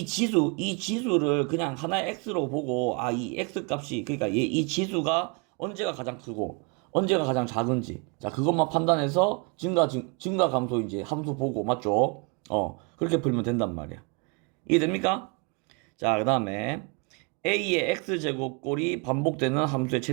지수를 그냥 하나의 x로 보고, 이 x 값이, 그러니까 이 지수가 언제가 가장 크고, 언제가 가장 작은지. 자, 그것만 판단해서 증가 감소인지 함수 보고, 맞죠? 그렇게 풀면 된단 말이야. 이해됩니까? 자, 그 다음에 a의 x제곱 꼴이 반복되는 함수의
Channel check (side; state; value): left; quieter; 32.0 dB